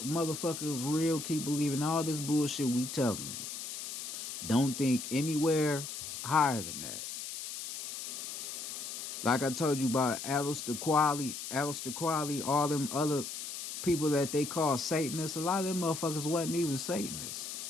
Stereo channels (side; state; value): left; noise; hiss, 7 dB below the sound